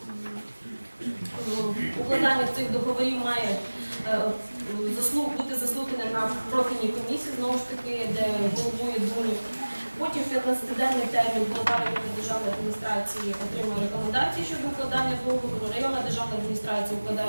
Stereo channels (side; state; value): both; inverted; correlation -1.00